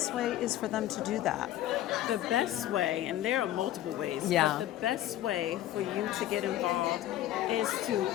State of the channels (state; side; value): quieter; right; 13.4 dB